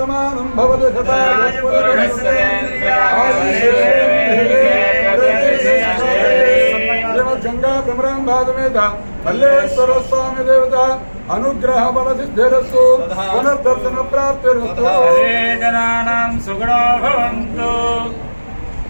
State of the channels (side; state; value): both; inverted; correlation -1.00